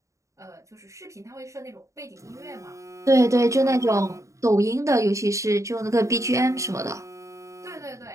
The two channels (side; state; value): left; late; 0.15 ms